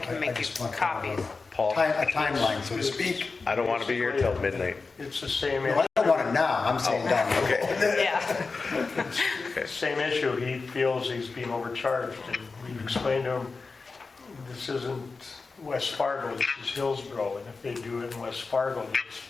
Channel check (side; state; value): right; quieter; 4.2 dB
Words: make you just want copies. Paul? A timeline, so to speak. I don't want to be here till midnight. It's the same, Well, I don't want it now, I'm saying down the road. Yeah. same issue. He feels he's being overcharged, and we've explained to him, this isn't West Fargo, this is Hillsboro, and if they do it in West Fargo,